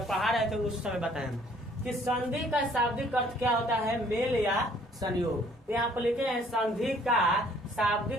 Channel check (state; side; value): normal; both; correlation 0.60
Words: पढ़ा रहे थे उस समय बताए कि संधि का शाब्दिक अर्थ क्या होता है, मेल या संयोग। यहाँ पर लिखे हैं संधि का